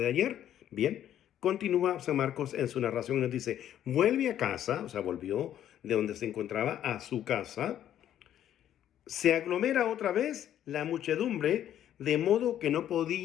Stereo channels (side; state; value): right; quieter; 11.0 dB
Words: ayer. Bien, continúa San Marcos en su narración y nos dice, vuelve a casa, o sea, volvió de donde se encontraba a su casa, se aglomera otra vez la muchedumbre, de modo que no